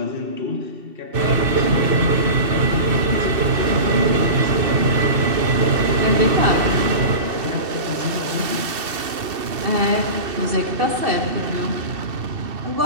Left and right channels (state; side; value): late; left; 2.7 ms